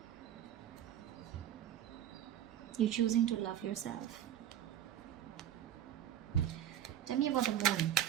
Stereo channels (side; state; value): left; quieter; 10.9 dB